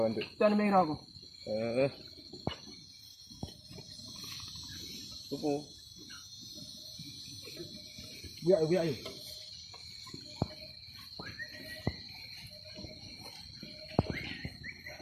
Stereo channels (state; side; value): identical; both; correlation 1.00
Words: tu. Tu ada merah aku. Tupu. Biar.